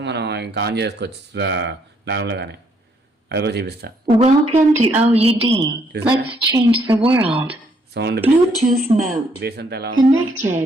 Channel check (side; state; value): both; normal; correlation 0.70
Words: మనం ఇంకా ఆన్ చేసుకోవచ్చు నార్మల్గానే. అది కూడా చూపిస్తా. Welcome to OUD. Let's change the world. Sound Bluetooth mode. Base అంతా ఎలా ఉంది,